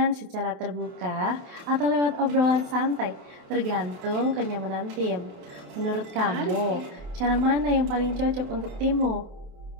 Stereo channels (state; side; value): late; left; 28 ms